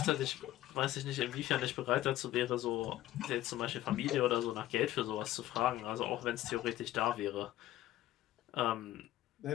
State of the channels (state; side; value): quieter; right; 14.4 dB